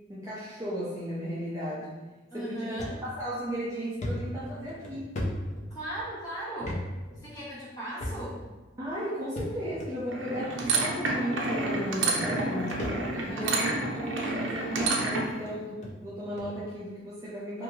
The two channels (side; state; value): both; normal; correlation 0.39